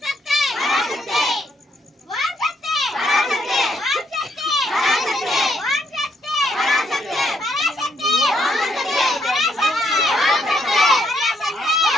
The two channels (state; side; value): normal; both; correlation 0.73